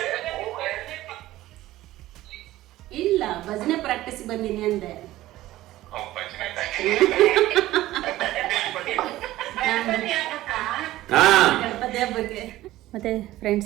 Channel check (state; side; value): quieter; left; 15.8 dB